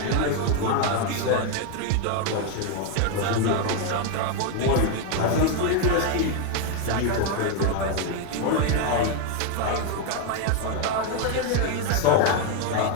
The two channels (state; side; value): different; both; correlation 0.01